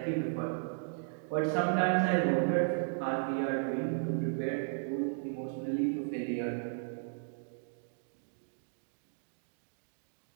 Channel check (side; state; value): left; silent; digital silence